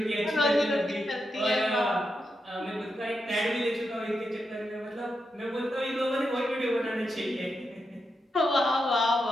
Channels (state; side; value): normal; both; correlation 0.85